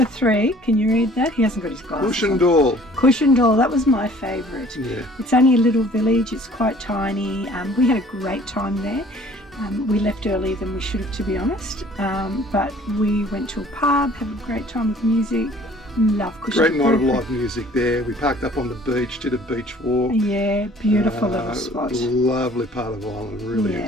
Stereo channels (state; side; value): normal; both; correlation 0.53